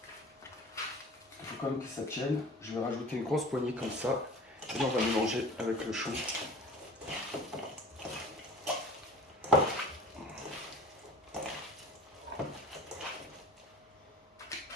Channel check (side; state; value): both; normal; correlation 0.42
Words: Il faut quand même que ça tienne. Je vais rajouter une grosse poignée comme ça. Et on va mélanger avec le chou. On